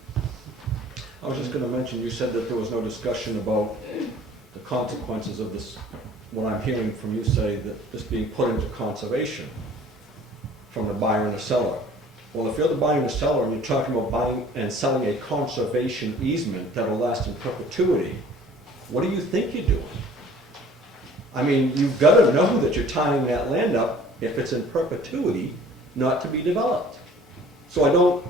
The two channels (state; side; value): normal; both; correlation 0.50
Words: I was just going to mention, you said that there was no discussion about the consequences of this, what I'm hearing from you say, that this being put into conservation from the buyer and the seller. Well, if you're the buyer and the seller and you're talking about buying and selling a conservation easement that will last in perpetuity, what do you think you're doing? I mean, you've got to know that you're tying that land up, if it's in perpetuity, not to be developed. So I